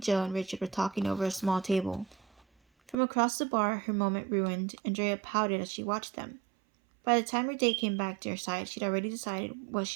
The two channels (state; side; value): drops out; left; at 3.0 s